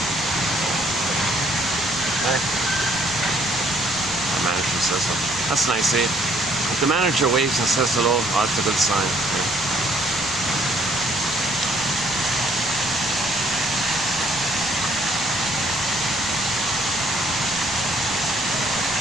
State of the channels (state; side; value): noise; left; rumble, 19 dB below the sound